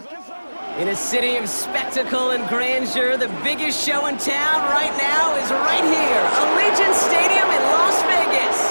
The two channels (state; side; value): inverted; both; correlation -1.00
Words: In a city of spectacle and grandeur, the biggest show in town right now is right here, Allegiant Stadium in Las